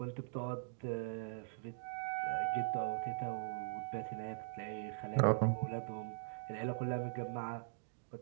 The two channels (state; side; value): silent; left; digital silence